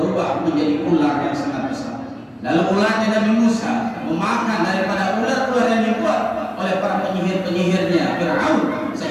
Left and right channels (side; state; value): both; identical; correlation 1.00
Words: menjadi ular yang sangat besar. Lalu ularnya Nabi Musa memakan daripada ular-ular yang dibuat oleh para penyihir-penyihirnya Fir'aun,